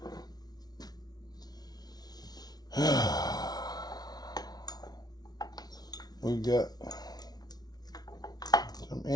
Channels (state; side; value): late; right; 0.19 ms